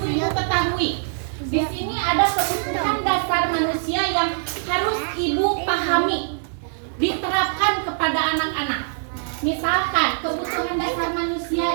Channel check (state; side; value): silent; left; 64 dB below the other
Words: ketahui. Di sini ada kebutuhan dasar manusia yang harus ibu pahami, diterapkan kepada anak-anak. Misalkan kebutuhan dasar